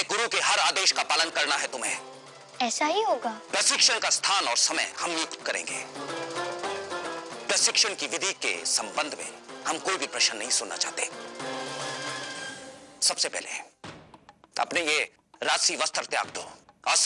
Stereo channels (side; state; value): both; identical; correlation 1.00